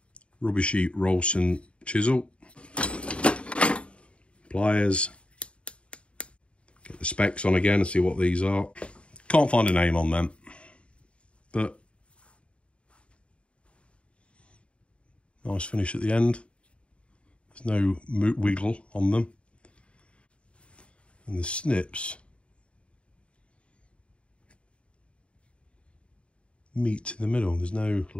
rubbishy Rolson chisel. Pliers. Get the specs on again and see what these are. Can't find a name on them, but nice finish at the end. There's no wiggle on them. And the snips meet in the middle. There's no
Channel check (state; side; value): late; right; 0.059 ms